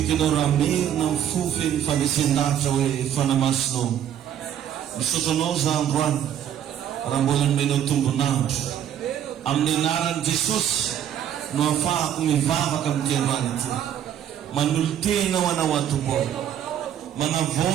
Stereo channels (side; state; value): left; quieter; 10.1 dB